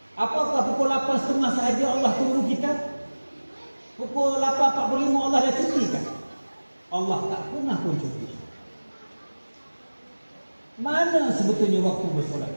Apakah pukul 8.30 sahaja Allah tunggu kita? Pukul 8.45 Allah dah cutikan? Allah tak pernah pun cuti. Mana sebetulnya waktu bersolat?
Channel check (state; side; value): inverted; both; correlation -1.00